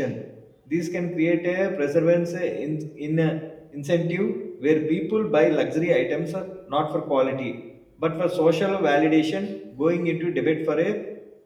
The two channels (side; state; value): both; identical; correlation 1.00